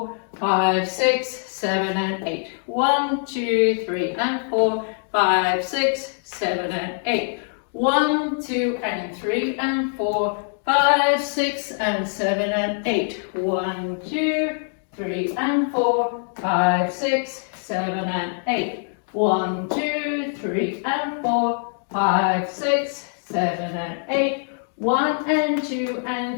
5, 6, 7, and 8. 1, 2, 3, and 4. 5, 6, 7, and 8. 1, 2, and 3, and 4. 5, 6, and 7, and 8. 1, 2, 3, and 4. 5, 6, 7, and 8. 1, 2, 3, and 4. 5, 6, 7, and 8. 1 and 2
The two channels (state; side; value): silent; right; 63 dB below the other